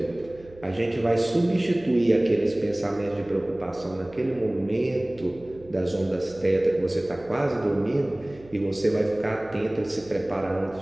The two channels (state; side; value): noise; right; hum, 22 dB below the sound